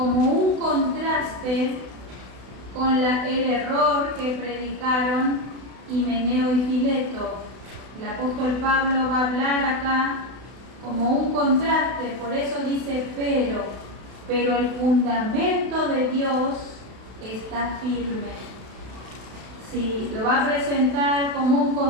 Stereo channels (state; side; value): late; left; 32 ms